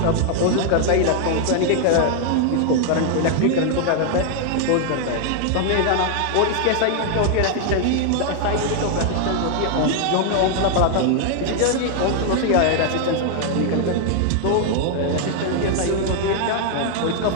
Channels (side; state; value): both; different; correlation 0.00